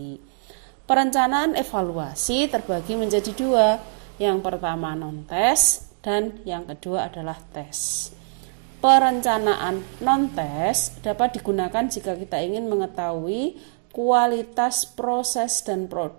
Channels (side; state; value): left; silent; digital silence